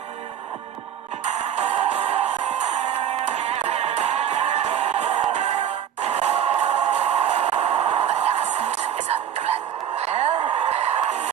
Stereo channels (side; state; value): left; quieter; 9.4 dB